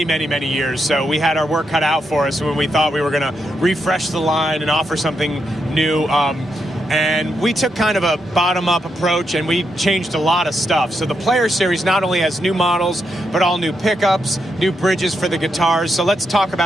many, many years. So we had our work cut out for us when we thought we were going to refresh the line and offer something new. And we took kind of a bottom-up approach, and we changed a lot of stuff. So the Player Series not only has new models, but all new pickups, new bridges for the guitars. So let's talk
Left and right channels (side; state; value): both; normal; correlation 0.82